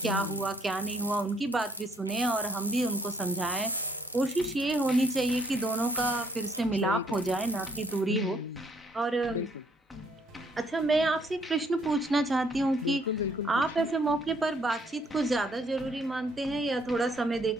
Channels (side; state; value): both; normal; correlation 0.66